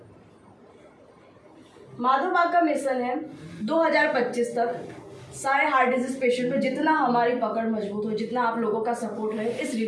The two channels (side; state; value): both; identical; correlation 1.00